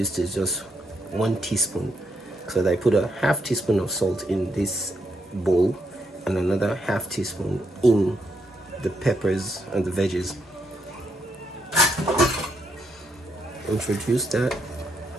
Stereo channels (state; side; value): normal; both; correlation 0.78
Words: is just 1 teaspoon. So I put a half teaspoon of salt in this bowl and another half teaspoon in the peppers and the veggies. Introduce that.